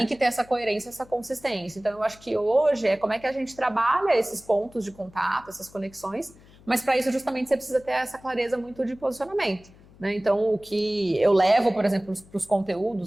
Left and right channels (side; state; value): left; noise; hum, 25 dB below the sound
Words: que ter essa coerência, essa consistência. Então, eu acho que hoje como é que a gente trabalha esses pontos de contato, essas conexões, mas para isso justamente você precisa ter essa clareza muito de posicionamento. Né? Então, o que eu levo, por exemplo, para os